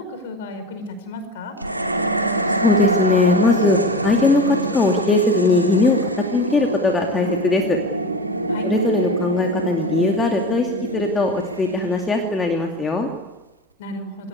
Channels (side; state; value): both; normal; correlation 0.30